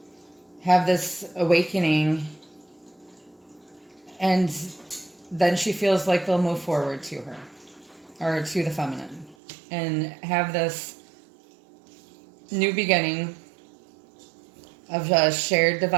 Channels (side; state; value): left; drops out; at 9.3 s